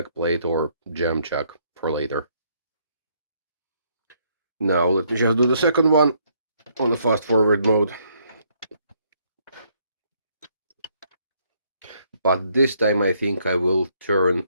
or jam chuck for later. Now let me just do the second one on the fast forward mode. But this time I think I will turn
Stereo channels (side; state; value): both; inverted; correlation -0.70